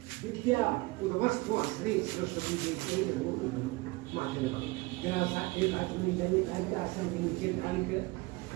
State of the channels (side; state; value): left; quieter; 23.4 dB